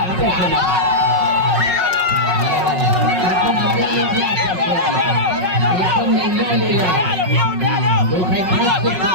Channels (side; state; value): left; late; 5.4 ms